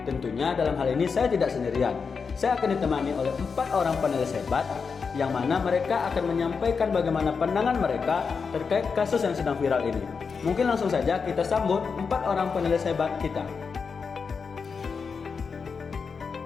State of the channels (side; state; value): right; quieter; 5.5 dB